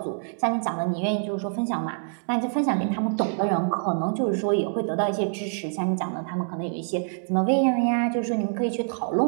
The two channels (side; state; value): left; silent; digital silence